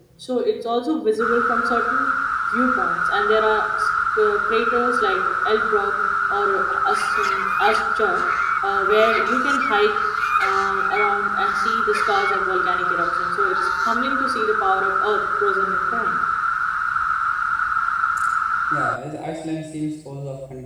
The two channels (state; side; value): identical; both; correlation 1.00